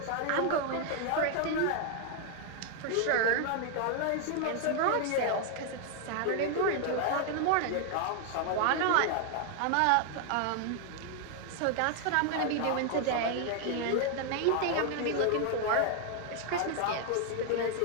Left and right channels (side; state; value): both; different; correlation 0.00